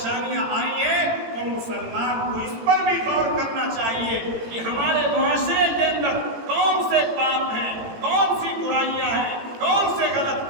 آئی ہیں تو مسلمان کو اس پر بھی غور کرنا چاہیے کہ ہمارے معاشرے کے اندر کون سے پاپ ہیں، کون سی برائیاں ہیں، کون سے غلط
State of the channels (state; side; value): late; left; 18 ms